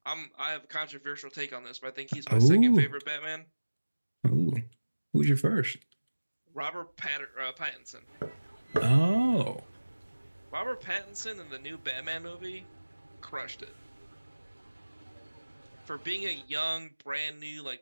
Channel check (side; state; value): both; inverted; correlation -1.00